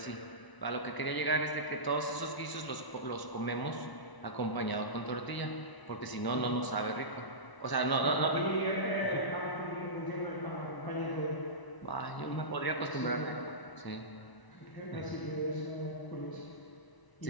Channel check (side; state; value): right; late; 1.0 ms